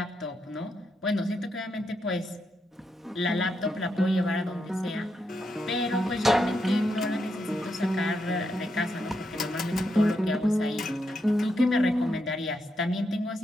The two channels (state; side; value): normal; both; correlation 0.82